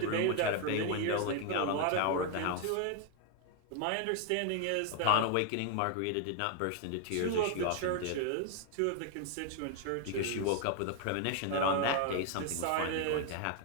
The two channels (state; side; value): different; both; correlation 0.00